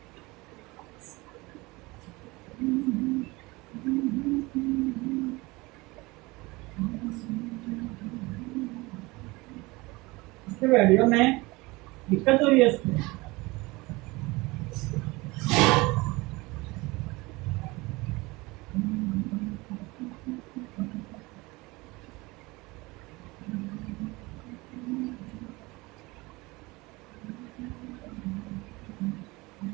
इसके वीडियो में दिक्कत हो रही है इसमें।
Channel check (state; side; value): quieter; left; 23.0 dB